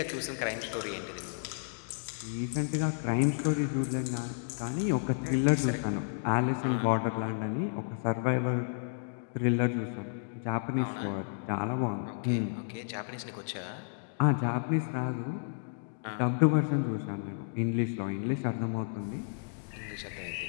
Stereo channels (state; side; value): silent; right; digital silence